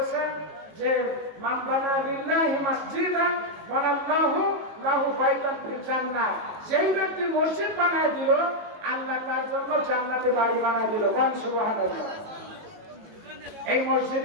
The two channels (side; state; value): left; late; 18 ms